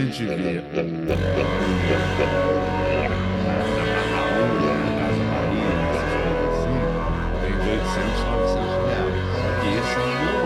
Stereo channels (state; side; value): identical; both; correlation 1.00